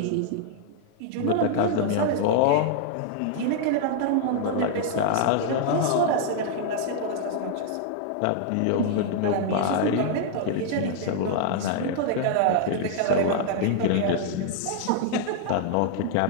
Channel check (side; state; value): both; different; correlation -0.01